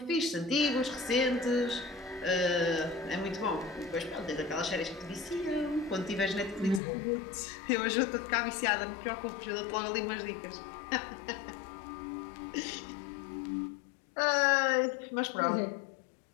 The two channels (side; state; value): right; drops out; at 6.8 s